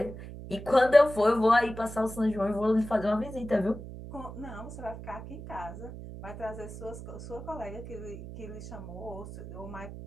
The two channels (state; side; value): noise; right; hum, 11 dB below the sound